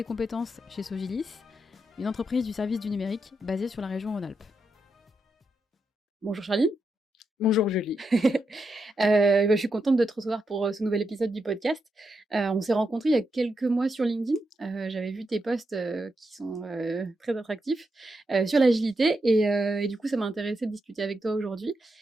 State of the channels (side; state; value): both; normal; correlation 0.84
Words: compétences chez Sogilis, une entreprise du service du numérique basée sur la région Rhône-Alpes. Bonjour Charline. Bonjour Julie. Je suis contente de te recevoir pour ce nouvel épisode du podcast. On s'est rencontrés il y a quelques mois sur LinkedIn. J'avais vu tes posts qui sont très attractifs sur l'agilité et du coup ça m'a intéressée de discuter avec toi aujourd'hui,